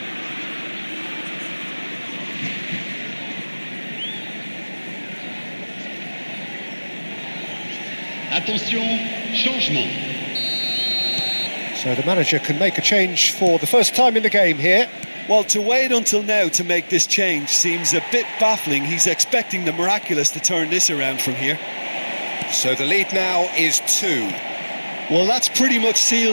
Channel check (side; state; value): both; inverted; correlation -1.00